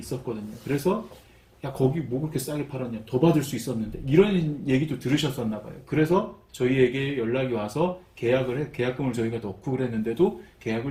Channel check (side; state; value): both; identical; correlation 1.00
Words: 그래서 야 거기 뭐 그렇게 싸게 팔았냐, 더 받을 수 있었는데 이런 얘기도 들으셨었나 봐요. 그래서 저희에게 연락이 와서 계약금을 저희가 넣고 그랬는데도